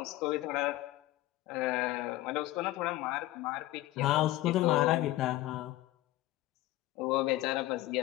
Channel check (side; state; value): right; quieter; 16.7 dB